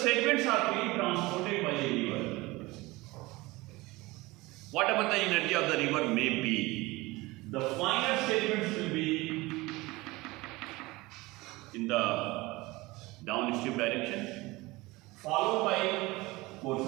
are being transported by a river, whatever the energy of the river may be, the finer sediments will be in the downstream direction, followed by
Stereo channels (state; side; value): quieter; left; 21.5 dB